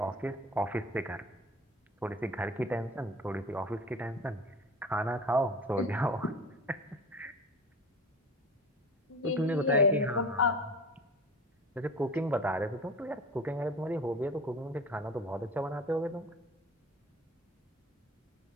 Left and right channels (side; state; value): both; normal; correlation 0.37